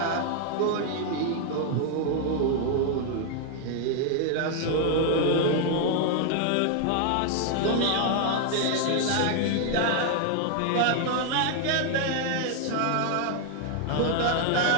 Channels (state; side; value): different; both; correlation 0.00